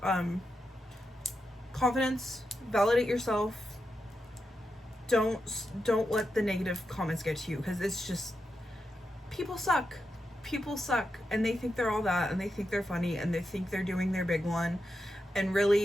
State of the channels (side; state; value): both; normal; correlation 0.87